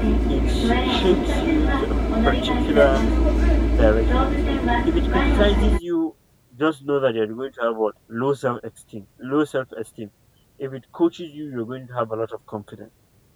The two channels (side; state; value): both; identical; correlation 1.00